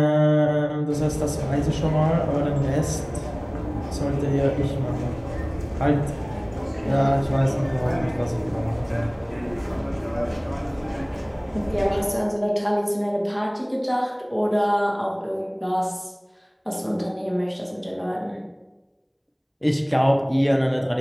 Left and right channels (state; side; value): identical; both; correlation 1.00